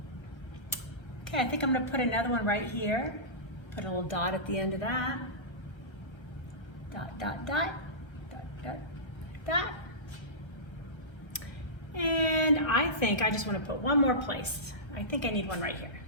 Okay, I think I'm gonna put another one right here. Put a little dot at the end of that. Dot, dot, dot, dot, dot, dot. And I think I just wanna put one more place. I think I need one right here.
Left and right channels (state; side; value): late; right; 1.1 ms